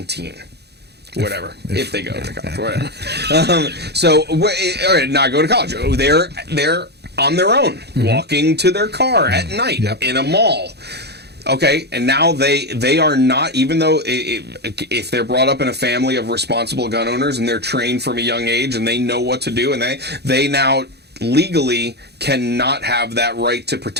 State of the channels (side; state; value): left; late; 0.48 ms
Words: Whatever, if they go to college, whatever. Not go to college. They're on their own, walking to their car at night in a mall. Okay, and now they are not, even though if they're brought up in a family of responsible gun owners and they're trained from a young age and they know what to do, and they now legally cannot have that right to